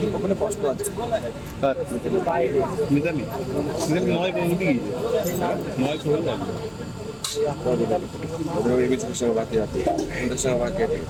ওখানে কষ্ট আছে। মিতালি নয় বলতে কি নয় খোল লাগবে ওদের এবিসির সঙ্গে বাকি আছে, ওদের সঙ্গে বাকি আছে,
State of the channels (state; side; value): identical; both; correlation 1.00